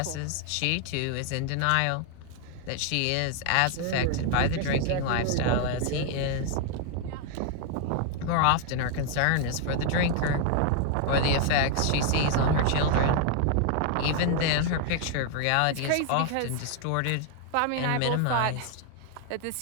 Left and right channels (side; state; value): both; different; correlation 0.00